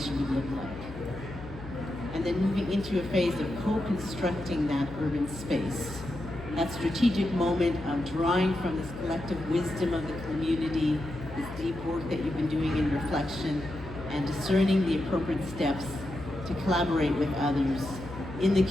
would look like. And then moving into a phase of co-constructing that urban space. That strategic moment of drawing from this collective wisdom of the community, this deep work that you've been doing in reflection, and discerning the appropriate steps to collaborate with others in the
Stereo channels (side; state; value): left; noise; hum, 14 dB below the sound